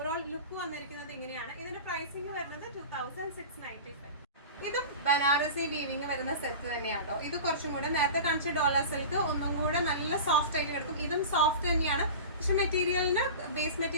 ലുക്ക് വന്നിരിക്കുന്നത്. ഇങ്ങനെയാണ് ഇതിന്റെ പ്രൈസിങ് വരുന്നത് 2695. ഇതും ബനാറസി വീവിങ് വരുന്ന സെറ്റ് തന്നെയാണോ. ഇത് കുറച്ചും കൂടെ നേരത്തെ കാണിച്ച ഡോളർ സിൽക്ക് ഒന്നും കൂടെ നല്ല സോഫ്റ്റ് ആയിട്ട് കിടക്കും. ഇതും സോഫ്റ്റ് തന്നെയാണ്, പക്ഷെ മെറ്റീരിയലിന് ബേസ്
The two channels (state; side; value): inverted; both; correlation -0.32